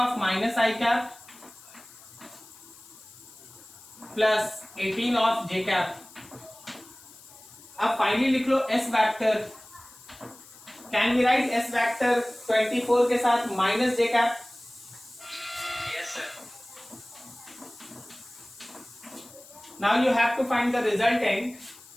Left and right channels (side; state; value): left; noise; hiss, 21 dB below the sound